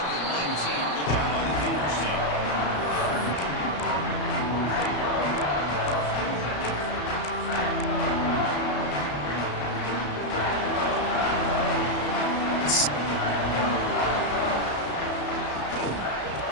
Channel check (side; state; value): right; late; 34 ms